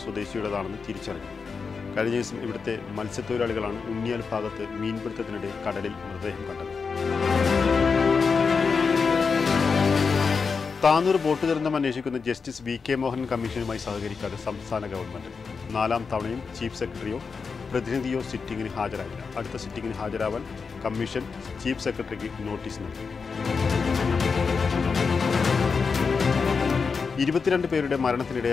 സ്വദേശിയുടേതാണെന്ന് തിരിച്ചറിഞ്ഞു. കഴിഞ്ഞ ദിവസം ഇവിടുത്തെ മത്സ്യത്തൊഴിലാളികളാണ് ഉണ്ണിയാൽ ഭാഗത്ത് മീൻപിടുത്തത്തിനിടെ കടലിൽ മൃതദേഹം കണ്ടത്. താനൂർ ബോട്ട് ദുരന്തം അന്വേഷിക്കുന്ന ജസ്റ്റിസ് വി കെ മോഹൻ കമ്മീഷനുമായി സഹകരിക്കാതെ സംസ്ഥാന ഗവൺമെന്റ് 4ാം തവണയും ചീഫ് സെക്രട്ടറിയോ പ്രതിനിധിയോ സിറ്റിംഗിന് ഹാജരായില്ല. അടുത്ത സിറ്റിംഗിന് ഹാജരാവാൻ കമ്മീഷൻ ചീഫ് സെക്രട്ടറിക്ക് നോട്ടീസ് നൽകി. 22 പേരുടെ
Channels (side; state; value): right; quieter; 5.2 dB